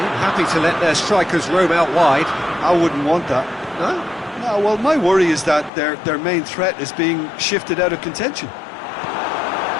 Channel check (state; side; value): drops out; right; at 5.7 s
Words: happy to let their strikers roam out wide. I wouldn't want that. No? No, well, my worry is that their main threat is being shifted out of contention.